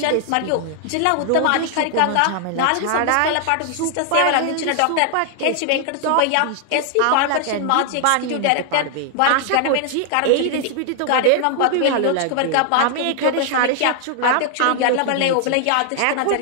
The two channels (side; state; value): both; different; correlation 0.00